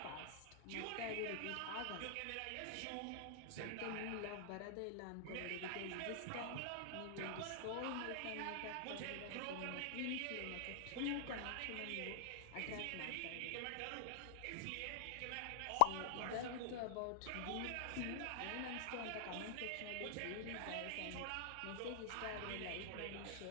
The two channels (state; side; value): different; both; correlation -0.01